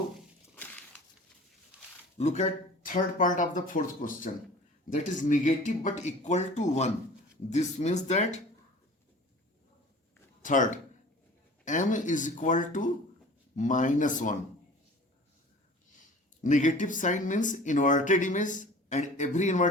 look at third part of the fourth question, that is negative but equal to 1. This means that third, M is equal to -1. Negative sign means inverted image, and every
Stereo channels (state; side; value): normal; both; correlation 0.44